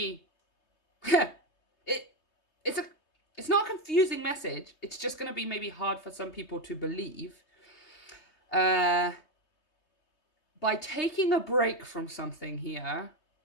it's not a confusing message. It's just going to be maybe hard for some people to believe. By taking a break from something here,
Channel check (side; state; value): right; late; 3.2 ms